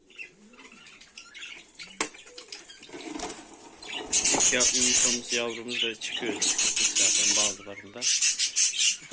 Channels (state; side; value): identical; both; correlation 1.00